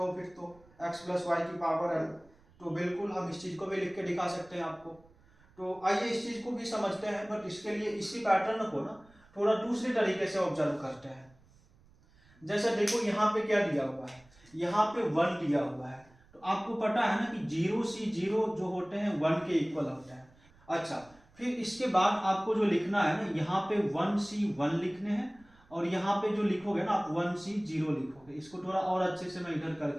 फिर तो x प्लस वाई की पावर n, तो बिल्कुल हम इस चीज को भी लिख के दिखा सकते हैं आपको। तो आइए इस चीज को भी समझते हैं, बट इसके लिए इसी पैटर्न को ना थोड़ा दूसरे तरीके से ऑब्जर्व करते हैं। जैसे देखो यहाँ पे क्या दिया हुआ है, यहाँ पे 1 दिया हुआ है, तो आपको पता है ना कि 0 जो होते हैं 1 के इक्वल होते हैं। अच्छा, फिर इसके बाद आपको जो लिखना है ना, यहाँ पे 1 लिखने हैं, और यहाँ पे जो लिखोगे ना आप 0 लिखोगे। इसको थोड़ा और अच्छे से मैं इधर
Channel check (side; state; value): right; noise; rumble, 28 dB below the sound